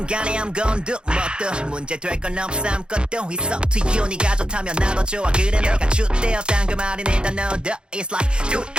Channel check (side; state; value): left; late; 0.051 ms